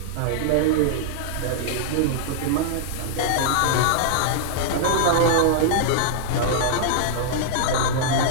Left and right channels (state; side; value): different; both; correlation -0.01